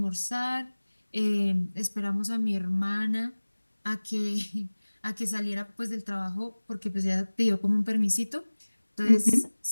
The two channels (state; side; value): inverted; both; correlation -1.00